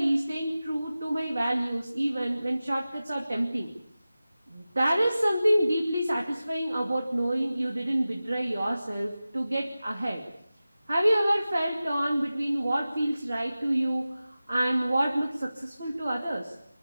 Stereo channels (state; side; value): inverted; both; correlation -0.96